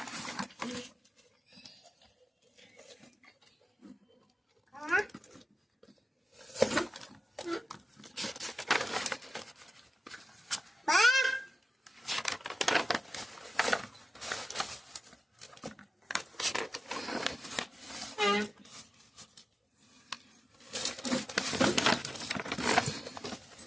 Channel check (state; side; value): normal; both; correlation 0.95